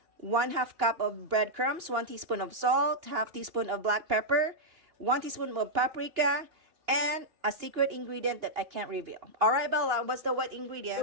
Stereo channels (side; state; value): left; late; 2.8 ms